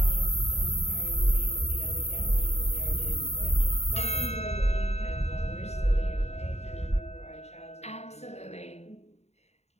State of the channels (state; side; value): late; right; 0.31 ms